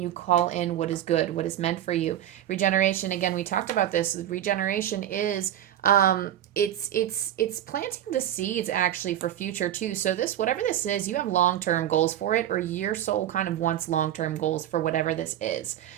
call in what is good, what is meant for you. Regeneration, again, we talked about this. Regeneration is it's planting the seeds actually for future too. So this, whatever this is, you have long-term goals for it, or your soul kind of wants long-term goals for whatever this is.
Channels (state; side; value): quieter; left; 11.6 dB